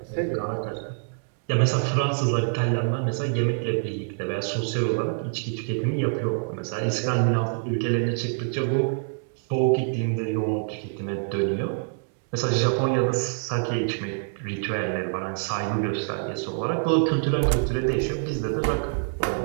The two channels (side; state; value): left; silent; digital silence